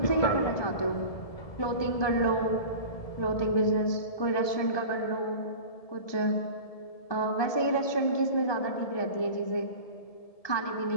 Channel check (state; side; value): late; right; 1.2 ms